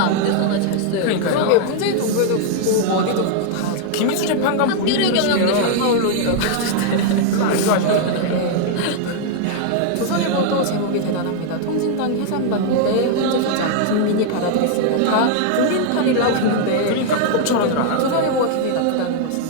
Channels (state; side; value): different; both; correlation 0.00